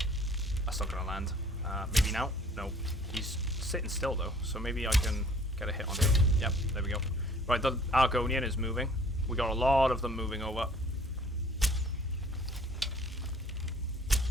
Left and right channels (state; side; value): normal; both; correlation 0.54